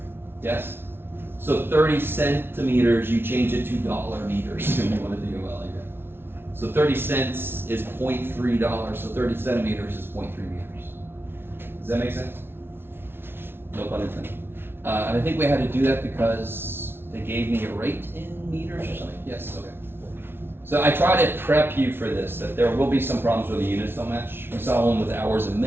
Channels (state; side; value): late; left; 0.11 ms